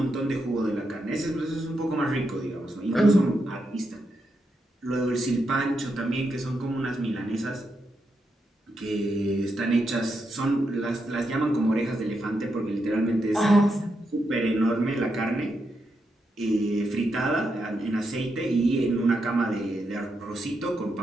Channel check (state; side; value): normal; both; correlation 0.83